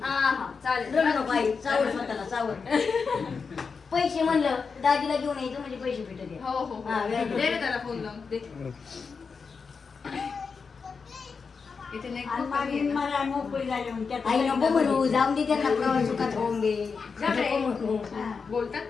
हा चालेल. रडू नको आई चावड स्वतःला चावड पैसे म्हणलं दाजीला घेऊन यायचं म्हणजे पैसे भेटत हो हो दे रे त्याला फोन लावून दे. इथे नाही खूप कमी आहे ना. आई नको म्हणू जाऊन दे त्यांना प्रवास सुखात होऊन दे जा रे. नको म्हणू बोलतात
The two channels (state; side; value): quieter; right; 5.3 dB